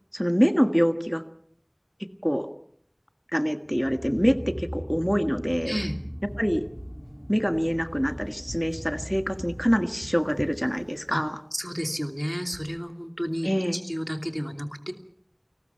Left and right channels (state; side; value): identical; both; correlation 1.00